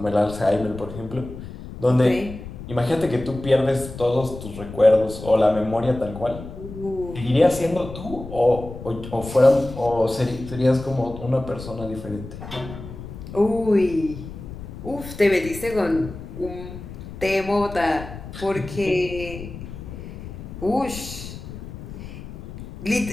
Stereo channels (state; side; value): noise; left; rumble, 12 dB below the sound